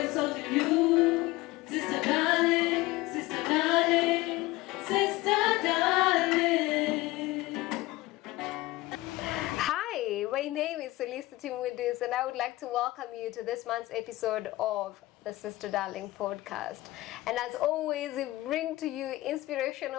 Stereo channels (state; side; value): quieter; right; 19.1 dB